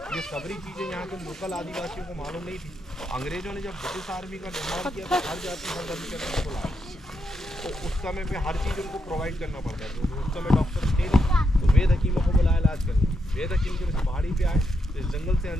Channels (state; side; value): normal; both; correlation 0.82